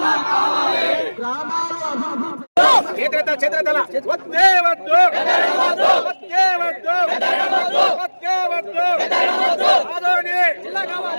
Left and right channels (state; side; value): inverted; both; correlation -1.00